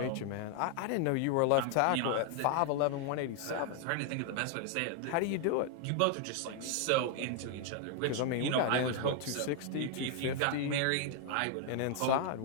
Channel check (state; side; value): different; both; correlation 0.00